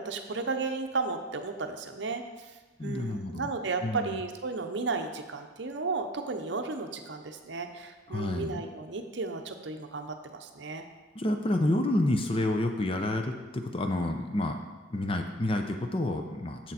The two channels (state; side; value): normal; both; correlation 0.47